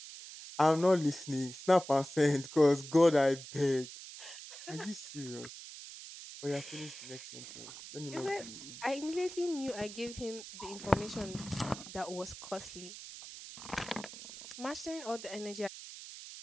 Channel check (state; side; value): noise; right; hiss, 13 dB below the sound